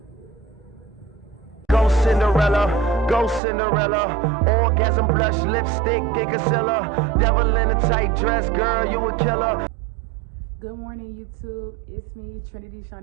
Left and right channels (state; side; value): drops out; left; at 3.4 s